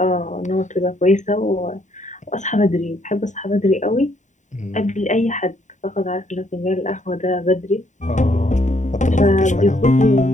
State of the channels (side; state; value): right; late; 0.35 ms